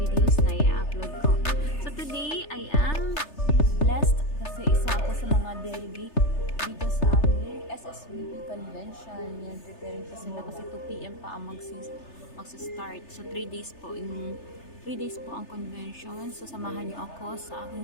na i-upload ko. So, today, I am blessed kasi isa ako sa mga delegate dito sa aming SSVP convention. Yan, preparing pa sila kasi 2 PM pa ang magsa-start. So, 3 days po ang convention. So, samahan niyo ako sa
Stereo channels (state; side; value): late; right; 3.3 ms